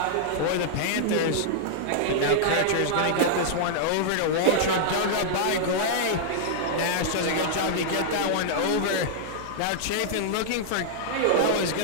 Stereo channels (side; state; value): both; different; correlation -0.01